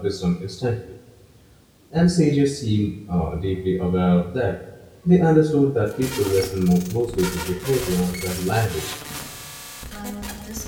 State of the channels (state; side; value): identical; both; correlation 1.00